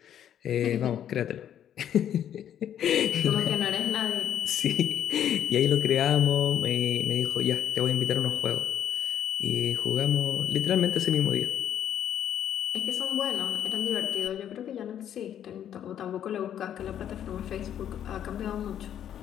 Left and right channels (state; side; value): quieter; right; 10.1 dB